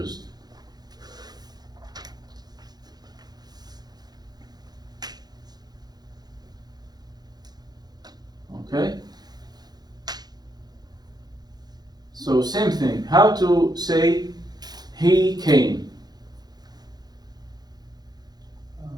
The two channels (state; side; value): late; left; 0.19 ms